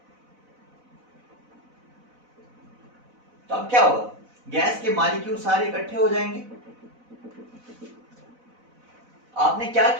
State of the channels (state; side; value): late; left; 4.0 ms